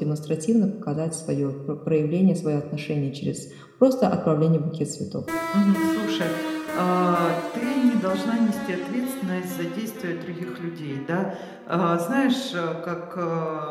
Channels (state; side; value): identical; both; correlation 1.00